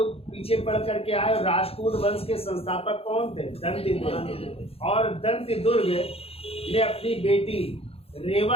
पीछे पढ़ करके आए। राष्ट्रकूट वंश के संस्थापक कौन थे? दंतिदुर्ग। और दंतिदुर्ग ने अपनी बेटी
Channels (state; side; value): late; right; 0.28 ms